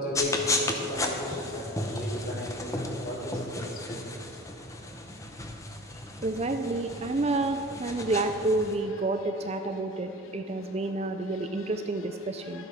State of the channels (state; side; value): normal; both; correlation 0.40